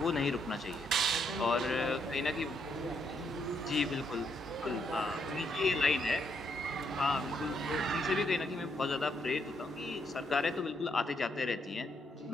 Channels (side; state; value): both; normal; correlation 0.75